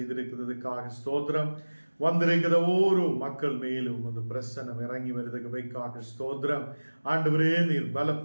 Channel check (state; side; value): inverted; both; correlation -1.00